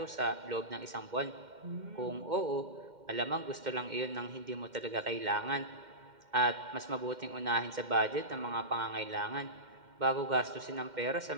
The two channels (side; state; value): left; late; 2.1 ms